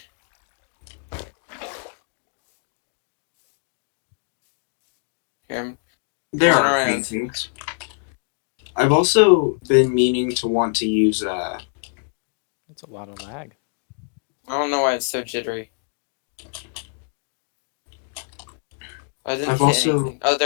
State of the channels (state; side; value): quieter; right; 39.1 dB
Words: Here, There Going are around. things. I've also been meaning to want to use That's a lot of lag. I don't know why it's so jittery. I didn't I've hit also- anything. Oh,